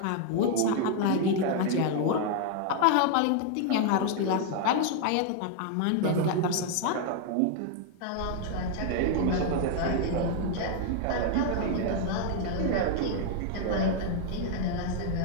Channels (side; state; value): both; different; correlation 0.00